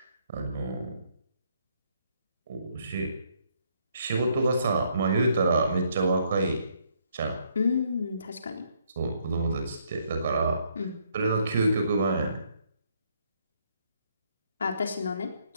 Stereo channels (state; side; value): inverted; both; correlation -0.71